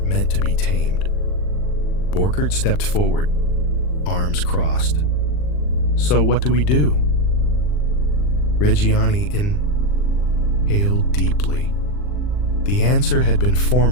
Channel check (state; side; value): late; right; 40 ms